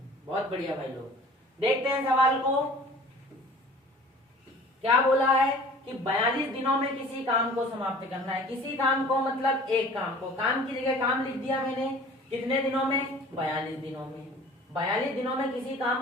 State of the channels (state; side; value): normal; both; correlation 0.46